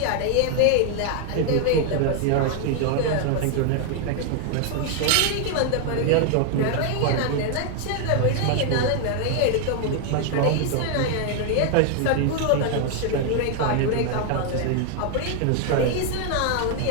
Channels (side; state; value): both; different; correlation 0.00